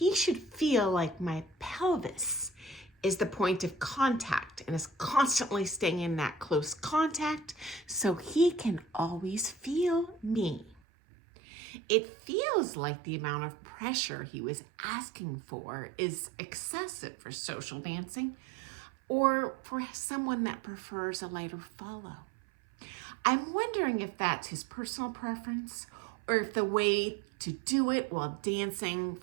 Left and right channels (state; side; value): drops out; left; at 10.8 s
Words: should feel like my pelvis is the point of contact and is constantly staying in that close contact so he can always feel me. It feels like the amount of pressure he was asking for is excessive for social dancing or for someone that prefers a lighter follow. I'm wondering if that's his personal preference or if the way to do it while dancing